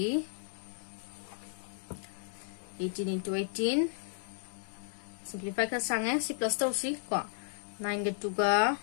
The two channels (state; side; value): silent; right; 55 dB below the other